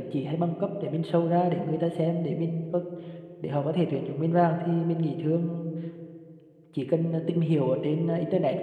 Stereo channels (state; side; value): identical; both; correlation 1.00